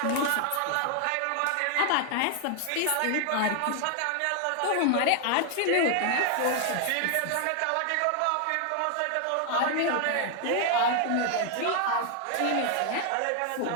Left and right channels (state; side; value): different; both; correlation 0.00